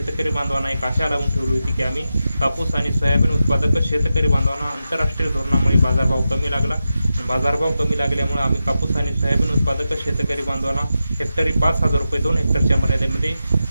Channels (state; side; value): inverted; both; correlation -0.90